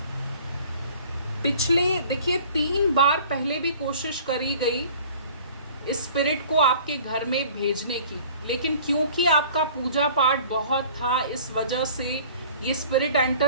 पिछले देखिए 3 बार पहले भी कोशिश करी गई इस स्पिरिट को आपके घर में भेजने की, लेकिन क्योंकि आपका पूजा पाठ बहुत था, इस वजह से ये स्पिरिट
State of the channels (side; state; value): both; inverted; correlation -0.49